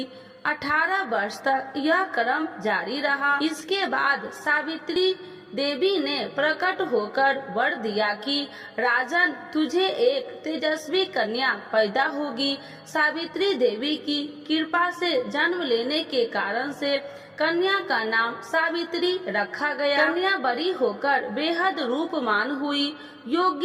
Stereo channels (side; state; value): both; identical; correlation 1.00